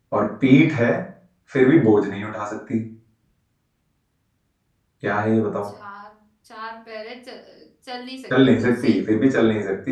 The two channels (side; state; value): both; identical; correlation 1.00